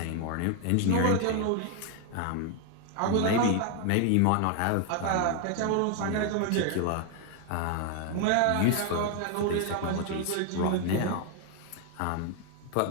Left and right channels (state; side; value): different; both; correlation 0.00